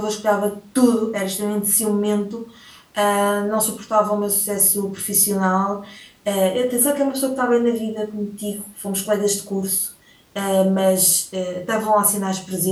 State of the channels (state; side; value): identical; both; correlation 1.00